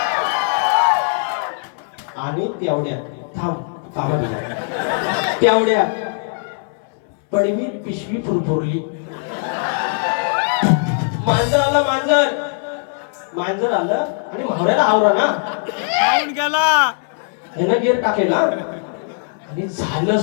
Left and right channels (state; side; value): silent; right; 62 dB below the other